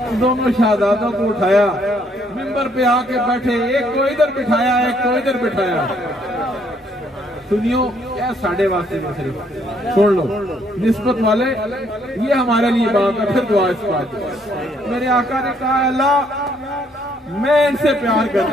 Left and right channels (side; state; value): both; normal; correlation 0.68